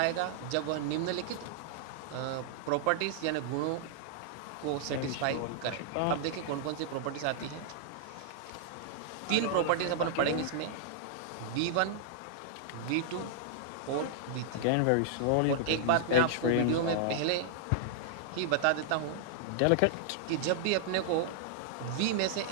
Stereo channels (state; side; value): different; both; correlation -0.01